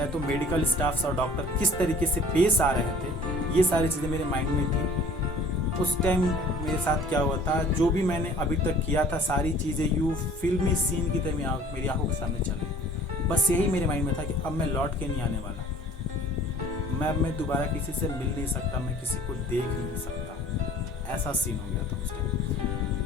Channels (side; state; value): both; normal; correlation 0.50